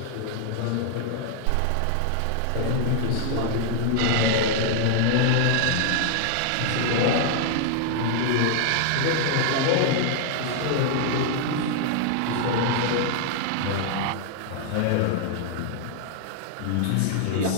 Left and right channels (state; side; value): different; both; correlation 0.00